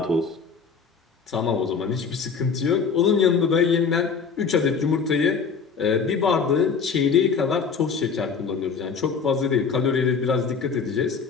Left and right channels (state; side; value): quieter; right; 5.6 dB